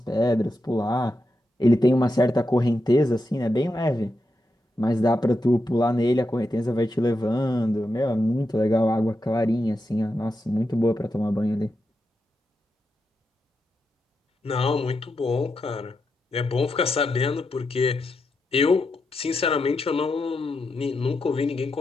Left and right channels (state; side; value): normal; both; correlation 0.86